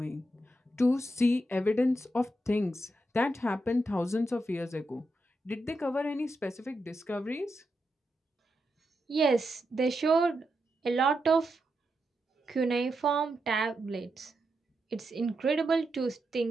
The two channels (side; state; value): both; normal; correlation 0.85